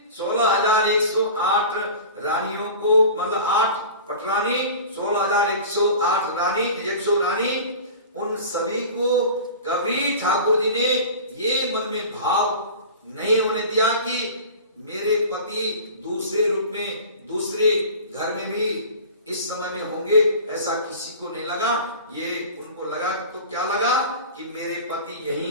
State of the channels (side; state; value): both; inverted; correlation -0.37